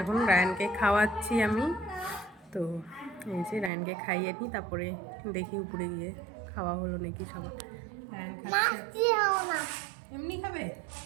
এখন। রায়ানকে খাওয়াচ্ছি আমি, তো এই যে রায়ানকে খাইয়ে নিই, তারপরে দেখি উপরে গিয়ে খাওয়া হলো নাকি সবার। রায়ান খাচ্ছে এমনি খাবে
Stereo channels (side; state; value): left; drops out; at 3.7 s